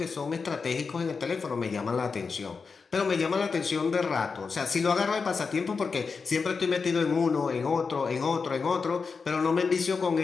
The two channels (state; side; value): quieter; right; 5.0 dB